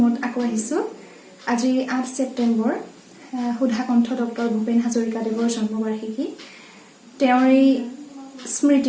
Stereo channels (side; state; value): both; identical; correlation 1.00